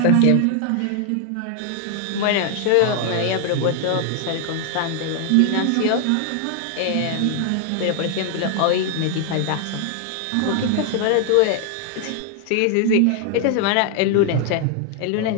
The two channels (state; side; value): different; both; correlation 0.00